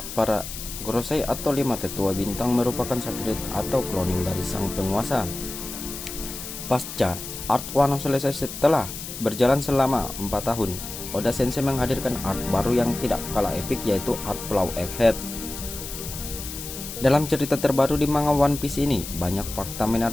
para Gorosei atau 5 tetua bintang merupakan satelit atau cloning dari sang penguasa. Pasca Art Wano selesai setelah berjalan selama 4 tahun, Oda Sensei menghadirkan art baru yang tidak kalah epik, yaitu art Pulau Egghead. Dalam cerita terbaru di manga One Piece ini, banyak fakta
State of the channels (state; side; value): noise; left; hiss, 9 dB below the sound